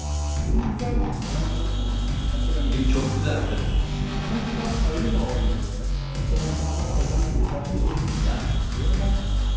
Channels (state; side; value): identical; both; correlation 1.00